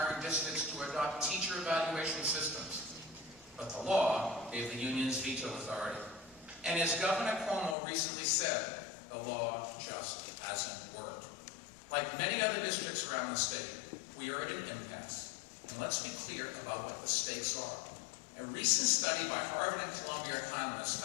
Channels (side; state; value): right; drops out; at 7.8 s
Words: districts to adopt teacher evaluation systems. But the law gave the unions veto authority. And as Governor Cuomo recently said, the law just hasn't worked. Like many other districts around the state, we are at an impasse. And let's be clear about what the stakes are. A recent study by Harvard and Columbia economists